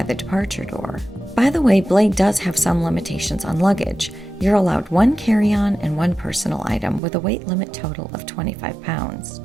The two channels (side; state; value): left; drops out; at 7.0 s